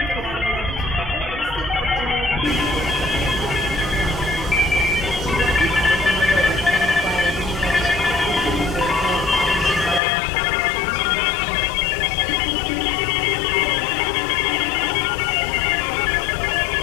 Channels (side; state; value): right; drops out; at 10.0 s